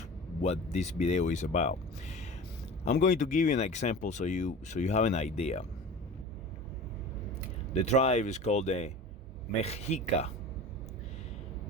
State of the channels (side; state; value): both; normal; correlation 0.36